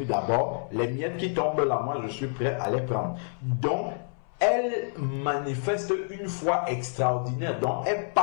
d'abord, les miettes qui tombent là, moi je suis prêt à les prendre. Donc, elle manifeste une foi extraordinaire. Donc, elle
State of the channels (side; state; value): right; silent; 59 dB below the other